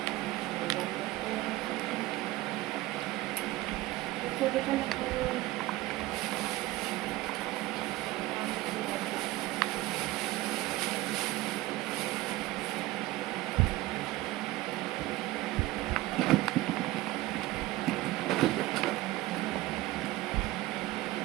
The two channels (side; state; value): left; quieter; 17.7 dB